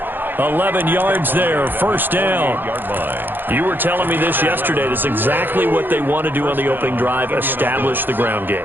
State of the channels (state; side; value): late; left; 0.095 ms